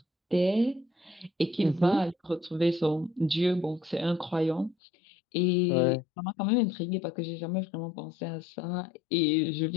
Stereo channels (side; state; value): right; drops out; at 4.8 s